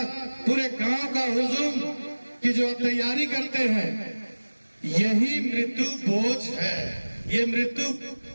पूरे गांव का हुजूम की जो तैयारी करते हैं, यही मृत्यु भोज है। ये मृत्यु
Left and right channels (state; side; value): inverted; both; correlation -1.00